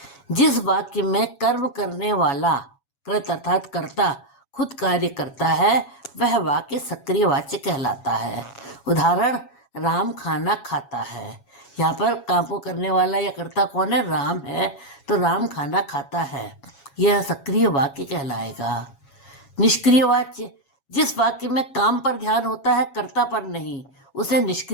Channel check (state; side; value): late; right; 7.2 ms